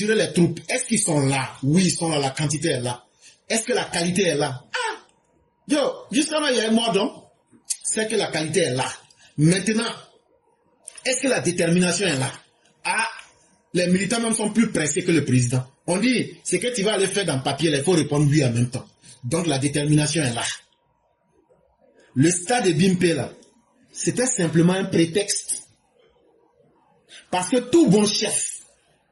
les troupes. Est-ce qu'ils sont là? Oui, ils sont là. La quantité est là. Est-ce que la qualité est là? Ah! Yo, jusqu'à là, il y a un mot donc. C'est que la qualité est là. Maintenant, est-ce que la détermination est là? Ah! Les militants même sont plus pressés que le président. On dit, c'est que tu vas aller faire dans le papier, il faut répondre oui en même temps. Donc la détermination est là. Le stade de Bimpe là, c'était simplement un prétexte. Parce que tout bon chef,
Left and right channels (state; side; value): identical; both; correlation 1.00